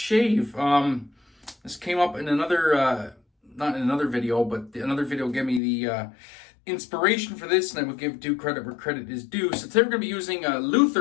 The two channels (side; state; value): right; drops out; at 5.6 s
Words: This came up in another, not in another video, but another video gave me the inspiration for this, and I will give due credit where credit is due. So today we're going to be using